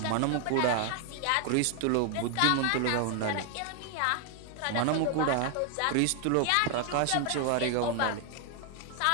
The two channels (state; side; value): different; both; correlation 0.00